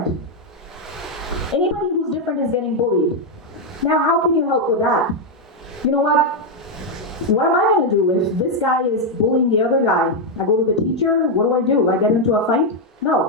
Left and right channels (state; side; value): normal; both; correlation 0.01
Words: Anybody who's different is getting bullied. Now, how can you help with that? You know what? What am I going to do if this guy is bullying the other guy? I go to the teacher, what do? I get into a fight?